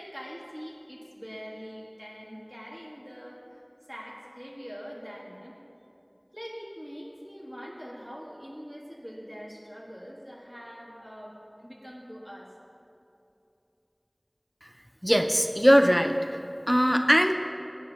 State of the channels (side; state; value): both; identical; correlation 1.00